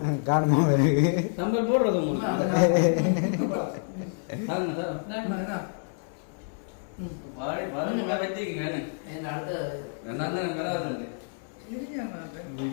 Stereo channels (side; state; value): right; silent; 59 dB below the other